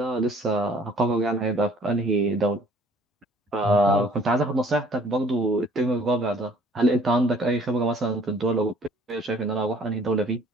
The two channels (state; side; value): normal; both; correlation 0.56